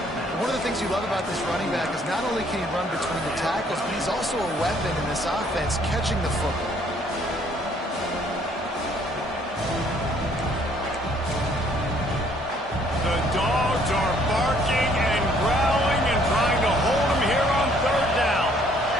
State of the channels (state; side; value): normal; both; correlation 0.63